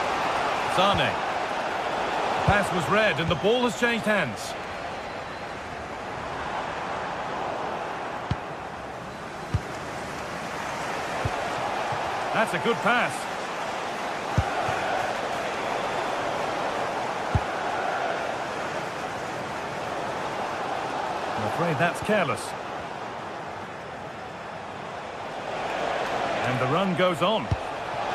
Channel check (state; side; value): identical; both; correlation 1.00